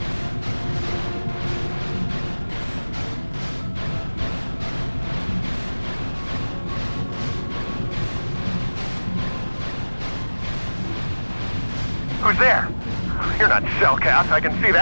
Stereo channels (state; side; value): inverted; both; correlation -1.00